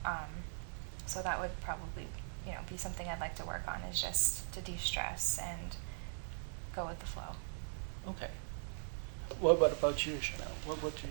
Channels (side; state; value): left; silent; digital silence